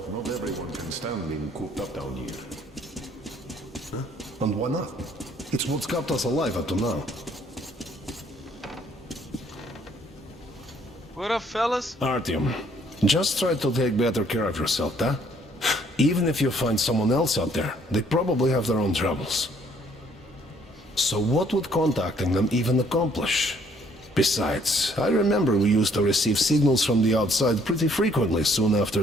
not everyone can stand being cooped up down here. Huh? And why not? It's what's kept us alive up to now. What up, fellas? Artyom, just try to take better care of yourself, huh? Even if you find someone else out there, they probably have their own troubles. So what would contacting them even accomplish? Besides, I remember we used to receive signals from the outside pretty frequently soon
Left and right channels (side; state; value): both; normal; correlation 0.64